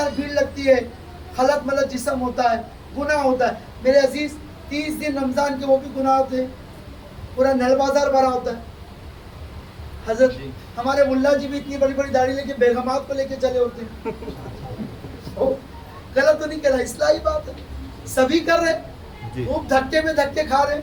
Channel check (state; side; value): identical; both; correlation 1.00